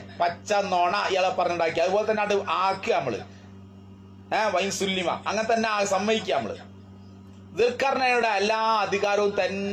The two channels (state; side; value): identical; both; correlation 1.00